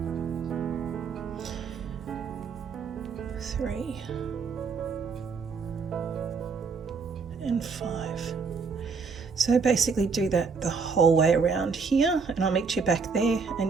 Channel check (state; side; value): quieter; left; 5.1 dB